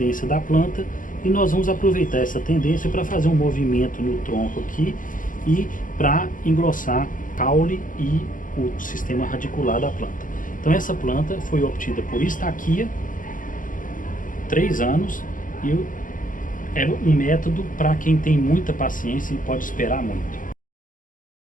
da planta. E nós vamos aproveitar essa tendência para fazer um movimento no tronco aqui e para engrossar o caule e o sistema radicular da planta. Então essa planta foi obtida por estaquia, 3 anos, e é um método para quem tem muita paciência e pode esperar muito.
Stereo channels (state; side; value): late; right; 0.39 ms